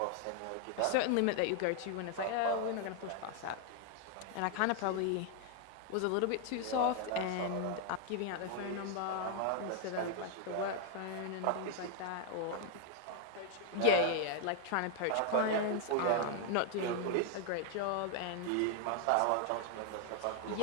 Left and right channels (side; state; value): both; different; correlation 0.00